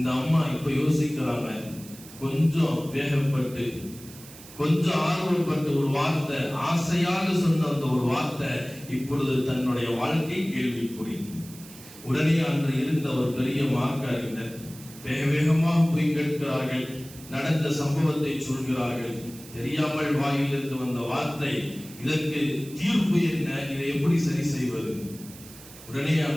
அம்மா இப்ப யோசிக்கிறாங்க, கொஞ்சம் வேகப்பட்டு கொஞ்சம் ஆர்வப்பட்டு ஒரு வார்த்தை, ஆசையாக சொன்ன அந்த ஒரு வார்த்தை இப்பொழுது தன்னுடைய வாழ்க்கை கேள்விக்குறி. உடனே அன்று இருந்த ஒரு பெரிய மார்க்க அறிஞர் வேக வேகமாக போய் கேட்கிறார்கள், நடந்த சம்பவத்தை சொல்கிறார்கள். தெரியாமல் வாயிலிருந்து வந்த வார்த்தை, இதற்கு தீர்ப்பு என்ன, இதை எப்படி சரி செய்வது? உடனே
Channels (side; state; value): right; noise; hiss, 18 dB below the sound